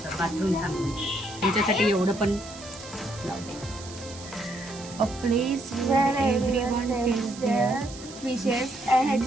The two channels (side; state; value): right; noise; hiss, 15 dB below the sound